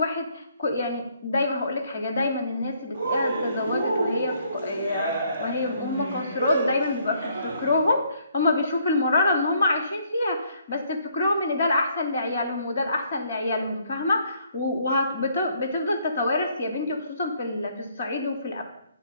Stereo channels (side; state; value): both; inverted; correlation -0.67